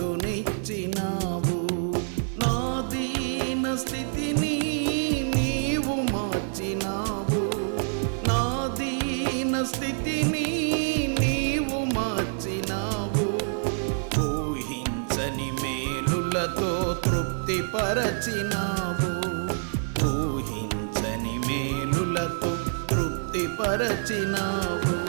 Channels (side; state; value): left; silent; 60 dB below the other